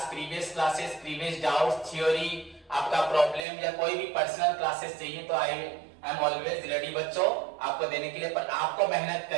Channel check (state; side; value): drops out; left; at 3.5 s